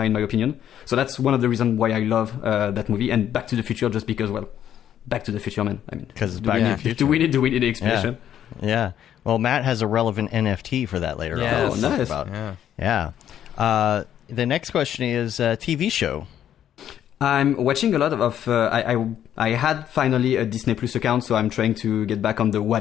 in my opinion. So that's one of the reasons why I love that movie. And Back to the Future, just because, well, Back to the Future, man. I mean, because Back to the Future. Do we need the explanation? Yeah. Well, Matt has a relevant NFT for that later on. Oh, nice. Yeah. The next question is TV show. I'm watching a lot of I had finally a Disney Plus account, so I'm trying to get back on the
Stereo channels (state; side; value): quieter; right; 10.4 dB